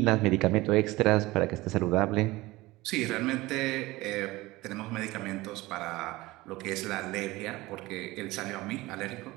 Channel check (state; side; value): quieter; left; 19.9 dB